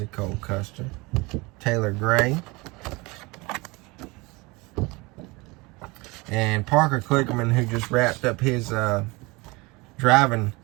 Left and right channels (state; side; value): quieter; left; 24.8 dB